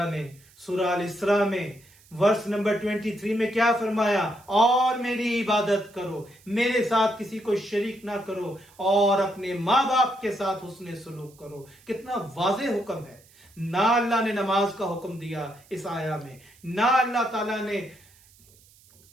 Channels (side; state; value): right; noise; hiss, 28 dB below the sound